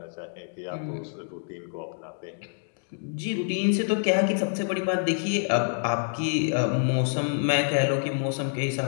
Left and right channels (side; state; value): right; silent; digital silence